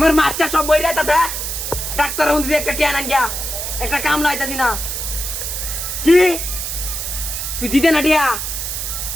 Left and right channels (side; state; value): right; noise; hiss, 4 dB below the sound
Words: মাস্টার সব বই রাইতাছে ডাক্তার হুন্দি একটা টিয়া আন গিয়া একটা কাম লাইতাছি না কি তুই দিতে না টিয়া